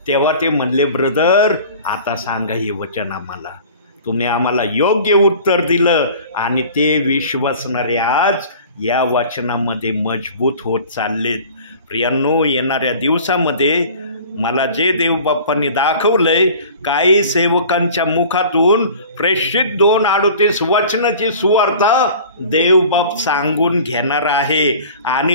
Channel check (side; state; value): both; inverted; correlation -0.43